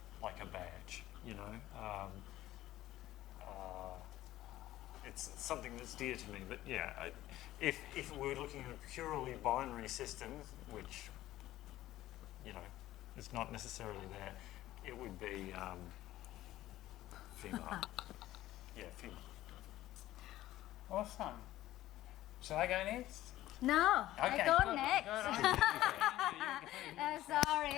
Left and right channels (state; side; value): quieter; right; 15.0 dB